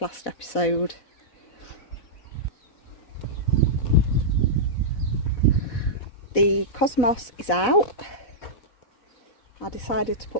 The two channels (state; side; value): late; right; 4.0 ms